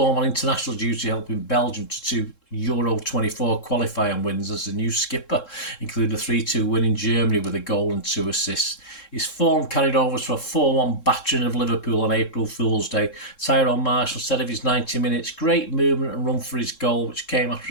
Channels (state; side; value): late; right; 3.7 ms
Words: on international duty, helping Belgium to 2 Euro 24 qualifying wins as the new skipper, including a 3-2 win in Germany with a goal and 2 assists. His form carried over to a 4-1 battering of Liverpool on April Fool's Day. Tyrone Marshall said of his 90 minutes, great movement and run for his goal, which came after